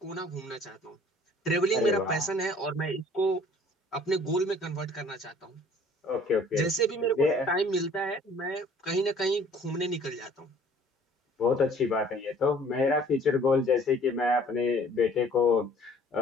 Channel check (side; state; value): both; normal; correlation 0.54